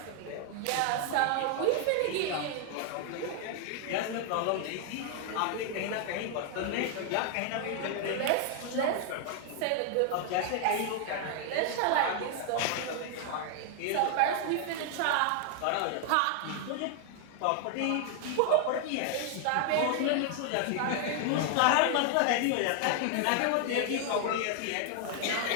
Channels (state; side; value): different; both; correlation 0.00